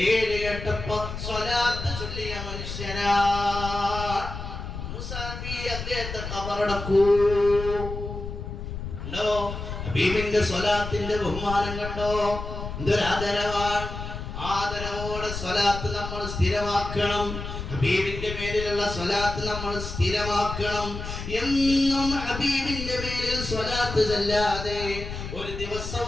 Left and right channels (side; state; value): left; noise; rumble, 7 dB below the sound